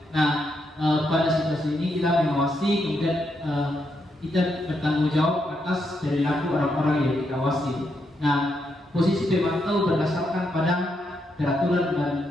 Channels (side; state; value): both; normal; correlation 0.80